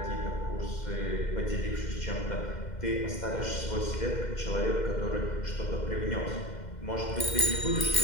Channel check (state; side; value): late; right; 2.1 ms